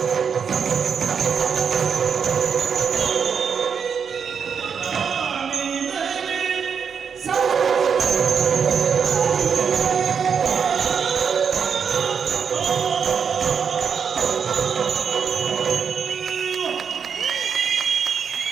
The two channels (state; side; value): quieter; left; 6.7 dB